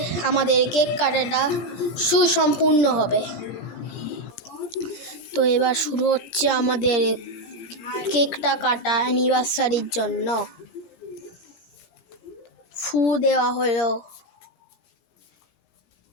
আমাদের কেক কাটাটা সুসম্পূর্ণ হবে। তো এবার শুরু হচ্ছে আমাদের কেকটা কাটা অ্যানিভার্সারির জন্য। ফু দেওয়া হলো,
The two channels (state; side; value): late; right; 17 ms